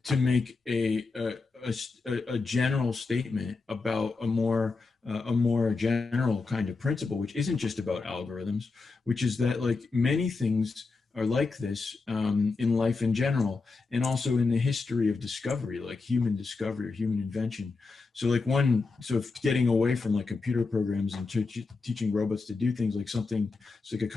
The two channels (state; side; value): quieter; right; 4.1 dB